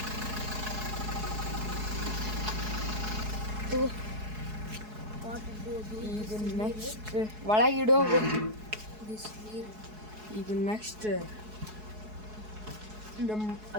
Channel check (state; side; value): late; left; 4.7 ms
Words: ಈಗ ನೆಕ್ಸ್ಟ್ ಒಳಗಿಡೋ ಈಗ ನೆಕ್ಸ್ಟ್ ನಮ್ಮ